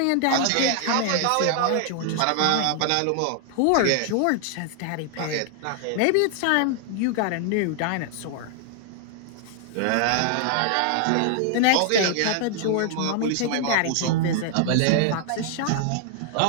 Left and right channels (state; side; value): different; both; correlation 0.00